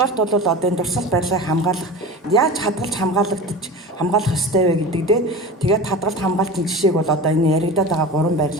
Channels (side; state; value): both; normal; correlation 0.32